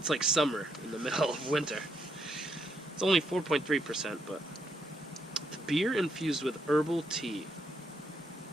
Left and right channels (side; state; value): both; normal; correlation 0.76